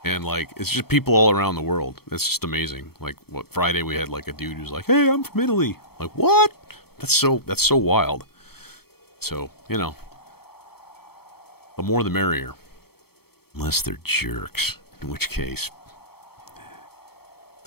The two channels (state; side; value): late; right; 0.95 ms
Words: and, like, it's just people all around the world. It's just amazing. Like, what, Friday we had, like, a dude who's like, hey, I'm from Italy. Like, what? That's so wild. So, you know, the more the merrier. Unless they're jerks, in which case,